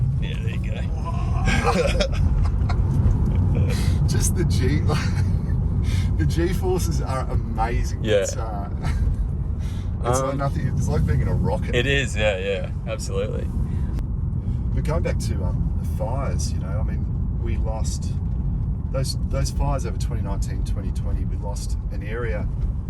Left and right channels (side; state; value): both; identical; correlation 1.00